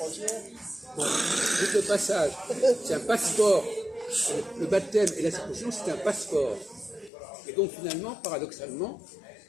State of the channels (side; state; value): right; drops out; at 7.1 s